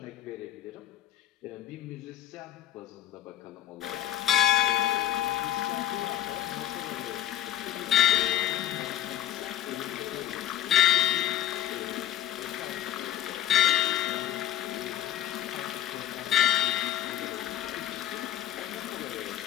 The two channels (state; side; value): quieter; right; 11.7 dB